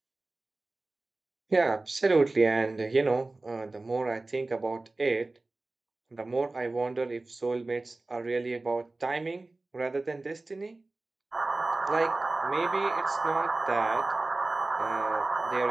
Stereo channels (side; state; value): left; quieter; 3.1 dB